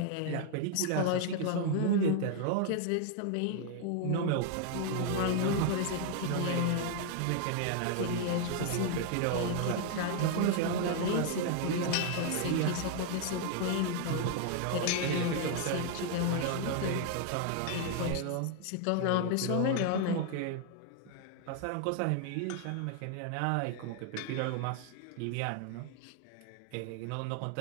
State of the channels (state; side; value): different; both; correlation 0.00